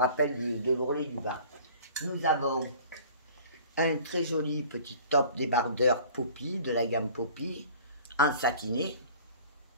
de l'ourlet du bas. Nous avons un très joli petit top débardeur Poppy, de la gamme Poppy, en satiné.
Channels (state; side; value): inverted; both; correlation -0.47